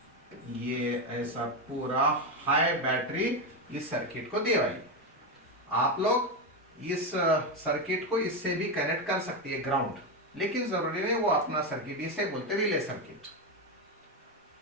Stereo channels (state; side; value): normal; both; correlation 0.10